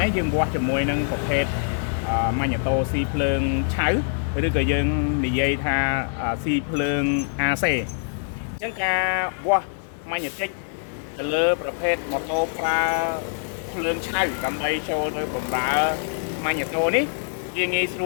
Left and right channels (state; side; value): silent; right; digital silence